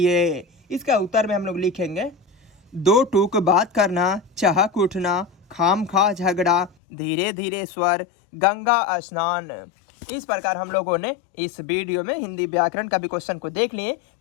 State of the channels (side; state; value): right; drops out; at 6.7 s